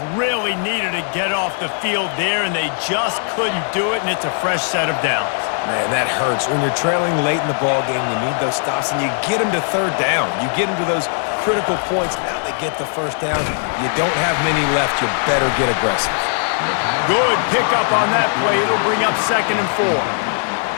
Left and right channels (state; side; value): silent; right; 61 dB below the other